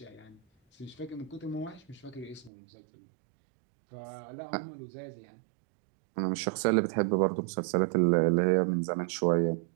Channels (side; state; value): left; drops out; at 2.5 s